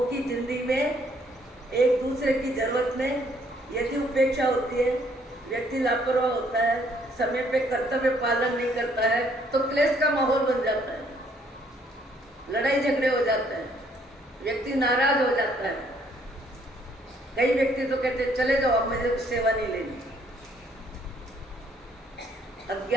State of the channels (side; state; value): both; normal; correlation 0.66